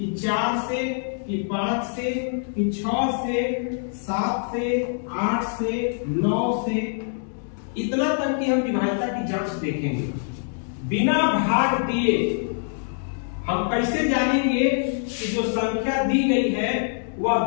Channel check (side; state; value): right; silent; digital silence